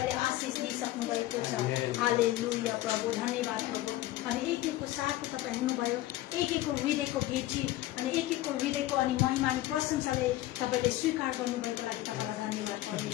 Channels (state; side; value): quieter; right; 16.0 dB